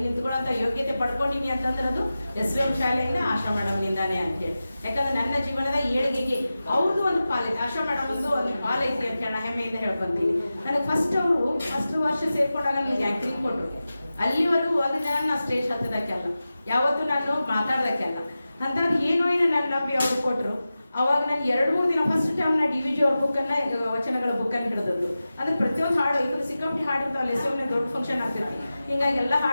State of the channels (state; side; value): inverted; both; correlation -0.94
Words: ನಿಂತ್ಕೊಳ್ಳೋಂಥ ಯೋಗ್ಯತೆ ಪಡ್ಕೊಂಡಿನಿ ಅಂತಂದ್ರೆ ಅದು SVM ಶಾಲೆಯಿಂದ ಆಶಾ ಮೇಡಮ್ನಿಂದಾನೇ ಅಂತೇಳಿ. ಯಾಕಂದ್ರೆ ನನ್ನ ಜೀವನದ ಏಳಿಗೆಗೆ ಅವ್ರದ್ದು ಒಂದು ಪಾಲೈತಿ, ಆಶಾ ಮೇಡಮ್ ಒಂದು ಪಾಲೈತಿ ಅಂತ ಹೇಳಿ ಹೆಮ್ಮೆಯಿಂದ ಹೇಳ್ಕೊಂತೀನಿ. ನನಗೆ ಫಸ್ಟ್ ವರ್ಷ ಸೇರ್ಕೊಂಡಾಗ ನನಗೆ ಆ್ಯಕ್ಟಿಂಗ್ ಕೊಟ್ಟರು. ಅಲ್ಲಿವರೆಗೂ ಒಂದು ದಿನ ನಾನು ಸ್ಟೇಜ್ ಹತ್ತದಕ್ಕೆಲ್ಲ, ಯಾವತ್ತೂ ನಾನು ಮಾತಾಡೋದಕ್ಕೆಲ್ಲ ಅಂಥದ್ದು ಏನೋ ನನ್ನ ನಂಬಿ ಅವ್ರು ಕೊಟ್ಟರು. ಅವಾಗ ನಾನು 2-3 ದಿನ ಫಸ್ಟ್ ಟೈಮ್ ನಾ DVG ಅವ್ರ ಬುಕ್ಕನ್ನು, ವಚನಗಳ ಬುಕ್ಕನ್ನು ಹಿಡಿದದ್ದು. ಅಂದ್ರೆ ಪ್ರತಿಯೊಂದು ಹಾಡು ಈಗ ಸಿಕ್ಕಾಪಟ್ಟೆ ಹಾಡಿರ್ತಾವಲ್ಲ, SVM ದೊಡ್ಡ ಫಂಕ್ಷನ್ ಆಗ್ತಿರ್ತೀವಿ. ಹಿಂಗಾಗಿ ಎಲ್ಲ